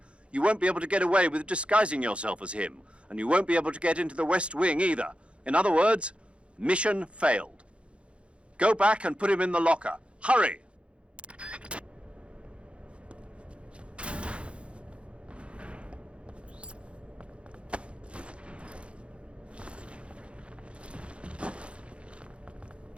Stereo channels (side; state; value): left; late; 0.059 ms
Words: you won't be able to get away with disguising yourself as him, and you won't be able to get into the West Wing either. In other words, mission failed. Go back and put him in the locker. Hurry!